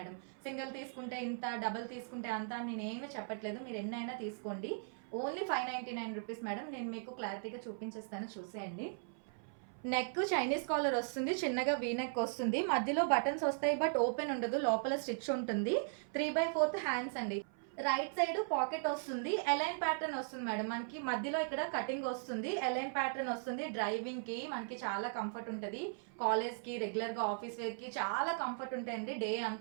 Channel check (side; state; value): left; silent; 52 dB below the other